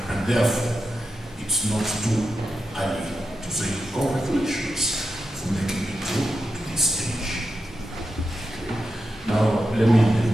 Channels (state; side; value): normal; both; correlation 0.89